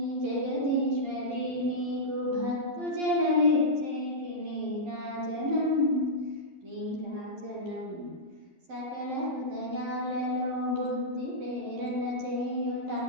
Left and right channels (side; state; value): left; late; 11 ms